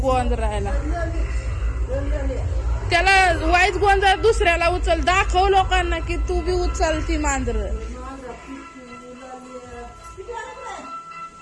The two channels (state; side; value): identical; both; correlation 1.00